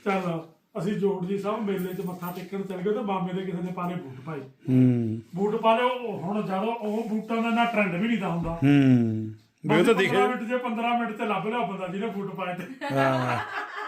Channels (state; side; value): identical; both; correlation 1.00